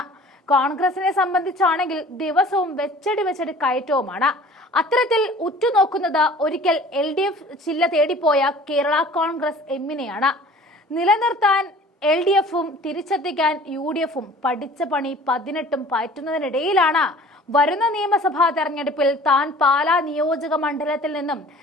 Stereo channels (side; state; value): both; normal; correlation 0.47